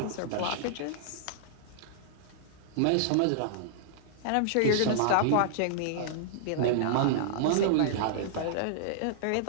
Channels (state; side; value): different; both; correlation -0.02